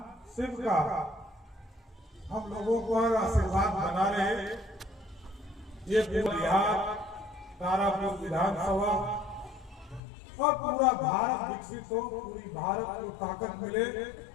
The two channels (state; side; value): drops out; right; at 10.0 s